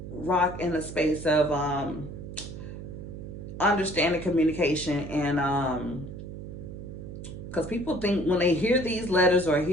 rock in a space of understanding communication and because people think when they hear these letters or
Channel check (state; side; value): noise; right; hum, 10 dB below the sound